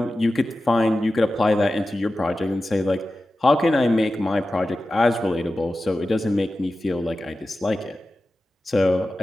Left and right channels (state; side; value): normal; both; correlation 0.94